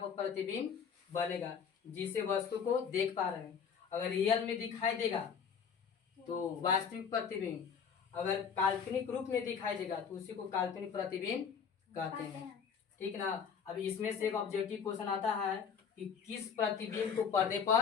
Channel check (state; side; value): quieter; right; 6.8 dB